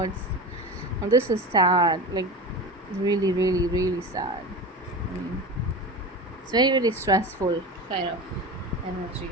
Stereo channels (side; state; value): both; normal; correlation 0.28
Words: And this is sad, like really, really, really sad. I mean, it's very, very stressful kind of energy.